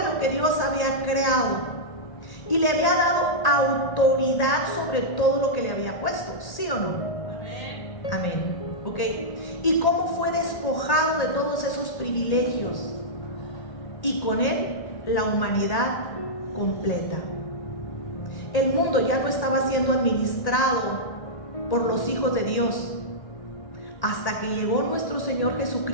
lo que Dios había creado y le había dado autoridad sobre todo lo que le había puesto, ¿sí o no? Amén. Amén. ¿Ok? ¿Y cómo fue despojado de todos esos privilegios? Y con él la humanidad completa. El mundo ya no estaba siendo administrado por los hijos de Dios, hasta que llegó nuestro Señor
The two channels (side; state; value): right; late; 1.8 ms